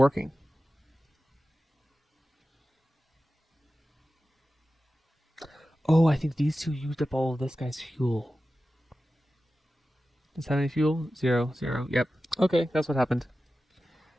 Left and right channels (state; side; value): normal; both; correlation 0.94